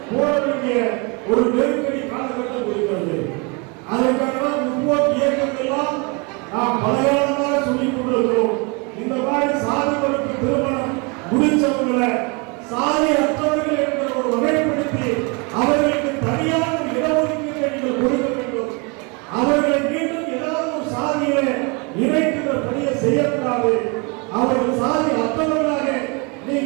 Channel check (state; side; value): quieter; left; 31.2 dB